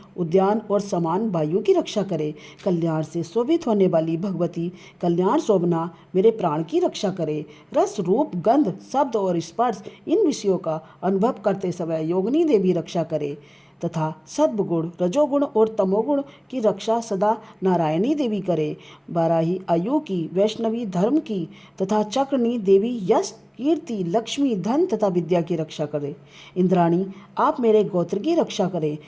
उद्यान और समान वायु की रक्षा करे। कल्याण से शोभित होने वाली भगवती कल्याण शोभना मेरे प्राण की रक्षा करे। रस, रूप, गंध, शब्द और स्पर्श इन विषयों का अनुभव करते समय योगिनी देवी रक्षा करे तथा सद्गुण, रजोगुण और तमोगुण की रक्षा सदा नारायणी देवी करे। बाराही आयु की, वैष्णवी धर्म की तथा चक्रनी देवी यश, कीर्ति, लक्ष्मी, धन तथा विद्या की रक्षा करे। इंद्राणी आप मेरे गोत्र की रक्षा करें।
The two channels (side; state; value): both; identical; correlation 1.00